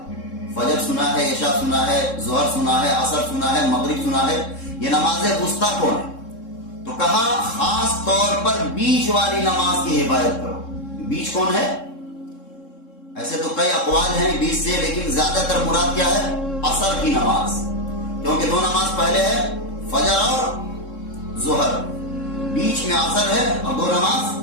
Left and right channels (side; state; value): right; late; 3.7 ms